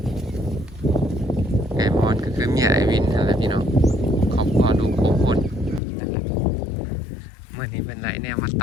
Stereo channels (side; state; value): right; drops out; at 5.8 s